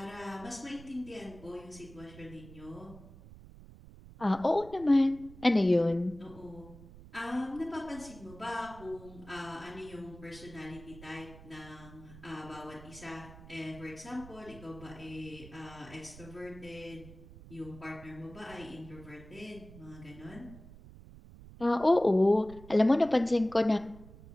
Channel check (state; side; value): noise; right; rumble, 18 dB below the sound